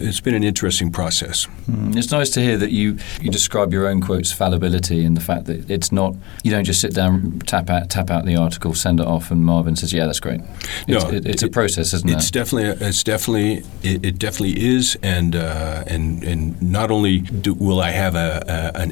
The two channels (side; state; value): right; quieter; 22.2 dB